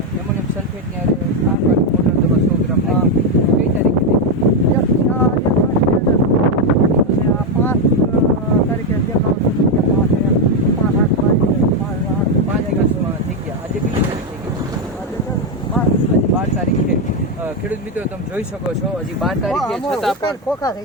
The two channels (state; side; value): normal; both; correlation 0.06